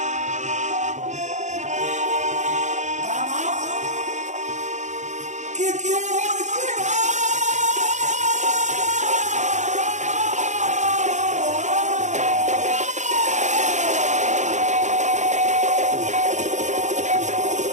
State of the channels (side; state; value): left; late; 0.34 ms